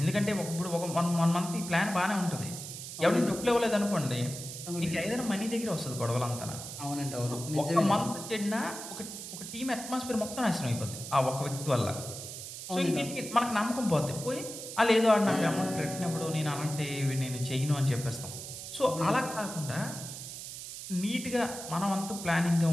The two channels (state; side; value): noise; right; hiss, 9 dB below the sound